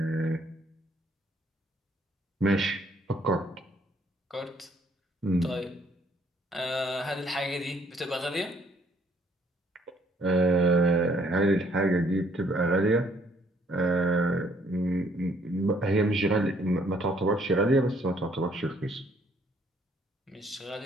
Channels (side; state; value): both; normal; correlation 0.65